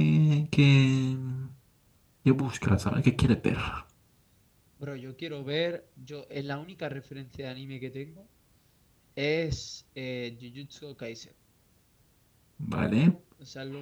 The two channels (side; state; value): both; identical; correlation 1.00